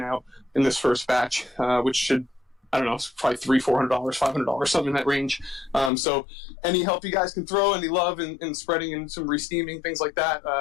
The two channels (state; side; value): drops out; right; at 5.9 s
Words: out in this first batch, which should, I don't know, it's probably $300, $400, $500, something in that range. So any help you guys can throw, any love in spreading and some re-steaming, things like that,